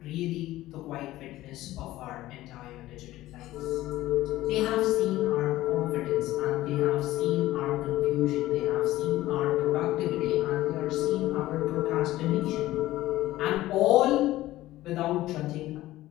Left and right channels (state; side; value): quieter; right; 16.0 dB